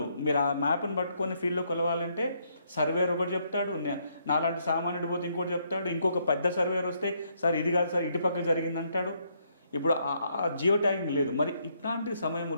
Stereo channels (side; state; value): both; inverted; correlation -0.73